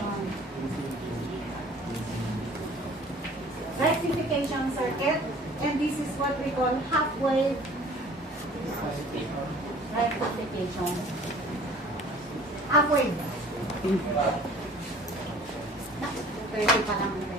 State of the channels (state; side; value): normal; both; correlation 0.49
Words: Rectification circuit, and this is what we call half-wave rectification. Half-wave. Pwede pa naman